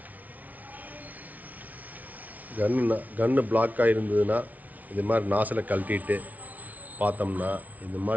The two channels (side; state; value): left; late; 0.074 ms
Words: கன்று பிளாக் ஆகிருந்ததுன்னா இது மாதிரி நாசில் கழட்டிட்டு பார்த்தோம்னா இந்த